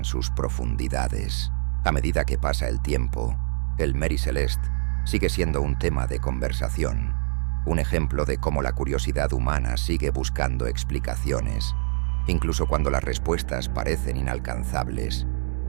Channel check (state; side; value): silent; left; digital silence